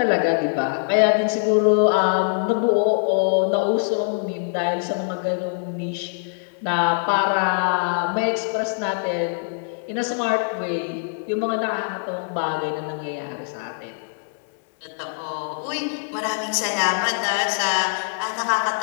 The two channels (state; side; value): silent; right; digital silence